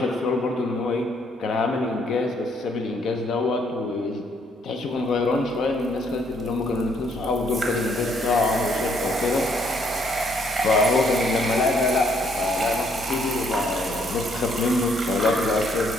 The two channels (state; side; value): normal; both; correlation 0.69